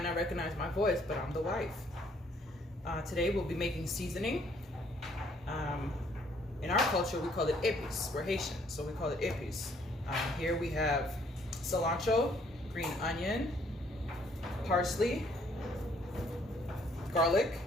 not recognize my voice, but I'm the wife. Today we'll be making seasoning. In our culture, we call it Epis. We're Haitian, so we call it Epis. Here we have cilantro, green onion, parsley, garlic,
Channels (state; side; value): normal; both; correlation 0.64